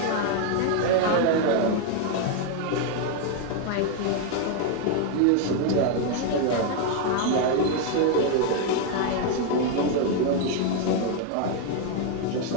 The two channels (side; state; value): both; different; correlation 0.01